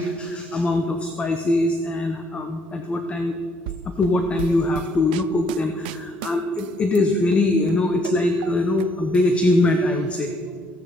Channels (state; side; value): normal; both; correlation 0.69